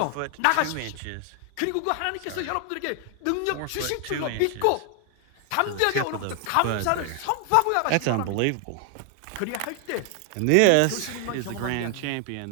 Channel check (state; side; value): different; both; correlation 0.00